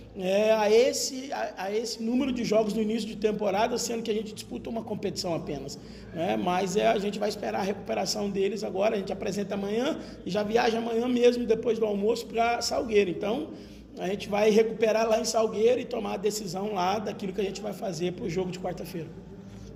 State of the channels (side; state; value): both; identical; correlation 1.00